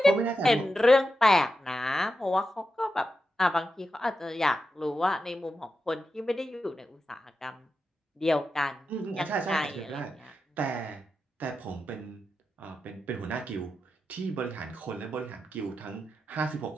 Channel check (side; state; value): both; normal; correlation 0.89